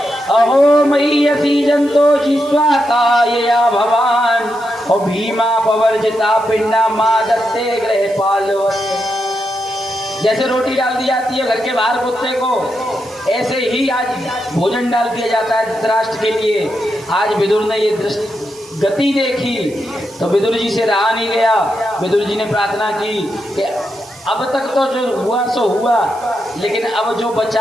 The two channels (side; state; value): right; noise; hiss, 22 dB below the sound